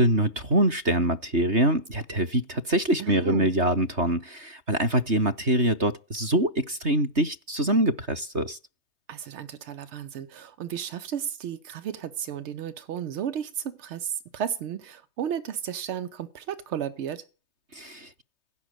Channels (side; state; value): left; late; 3.2 ms